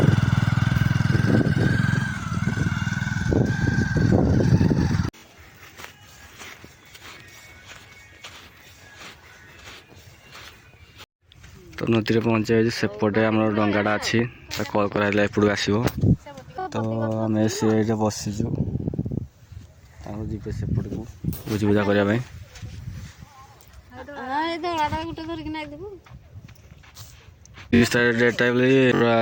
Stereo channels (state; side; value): identical; both; correlation 1.00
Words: ତ ନଦୀରେ ପହଞ୍ଚିଯାଇଛି ସେପଟେ ଆମର ଡଙ୍ଗାଟା ଅଛି ତା କଲ୍ କରାହେଲେ ଏପଟକୁ ଆସିବ ତ ଆମେ ସେ ଏଇଠି ବସିଛୁ ତାଙ୍କୁ ଯିବେ ସେପଟକୁ ଭୋଜି ଭୁଜା କରିବା ପାଇଁ ଡେଟ୍ ଟାଇମ୍ରେ